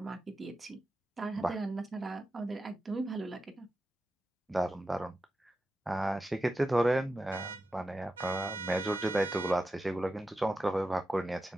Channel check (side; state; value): both; normal; correlation 0.91